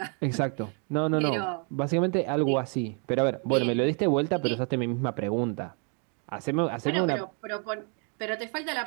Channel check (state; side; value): quieter; left; 39.6 dB